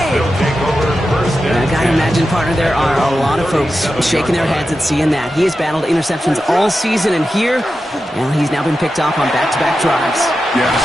I gotta imagine, partner, there are a lot of folks shaking their heads at seeing that. He has battled interceptions all season, and here, well, he's now been picked off on back-to-back drives. Yeah,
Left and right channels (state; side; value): normal; both; correlation 0.91